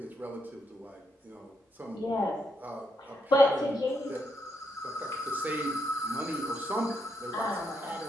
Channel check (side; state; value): both; normal; correlation 0.79